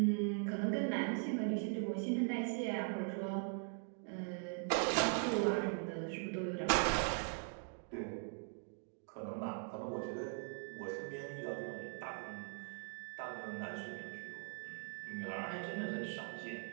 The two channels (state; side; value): silent; left; 50 dB below the other